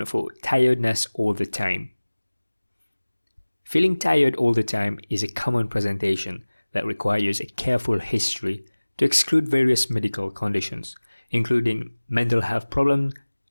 for tiredness all the time. Feeling tired all the time is a common presentation that requires a careful history to exclude various medical conditions, including mental health problems,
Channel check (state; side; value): inverted; both; correlation -1.00